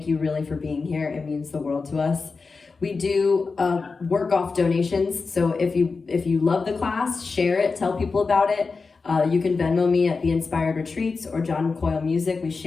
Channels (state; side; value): quieter; right; 4.4 dB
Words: you really for being here. It means the world to us. We do work off donations, so if you love the class, share it, tell people about it. You can Venmo me at The Inspired Retreats or John Coyle Music. We